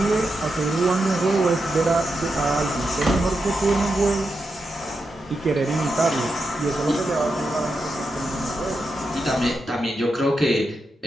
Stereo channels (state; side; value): normal; both; correlation 0.87